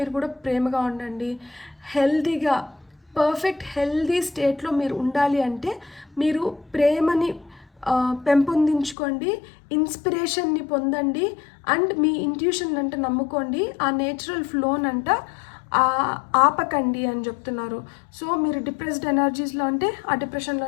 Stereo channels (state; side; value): drops out; right; at 9.0 s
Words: కూడా ప్రేమగా ఉండండి. హెల్తీగా పర్ఫెక్ట్ హెల్తీ స్టేట్లో మీరు ఉండాలి అంటే మీరు ప్రేమని పెంపొందించుకోండి, ఇన్స్పిరేషన్ని పొందండి అండ్ మీ ఇంట్యూషన్ అంటే నమ్ముకోండి. ఆ నేచురల్ ఫ్లోనంట ఆపకండి అని చెప్తున్నారు. సో మీరు డిప్రెస్డ్ ఎనర్జీస్లో అంటే ఆ